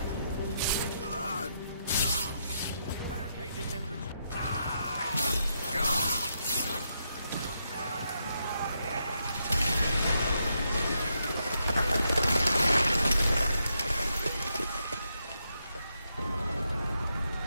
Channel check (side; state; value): both; inverted; correlation -0.81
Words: Barricade this entrance.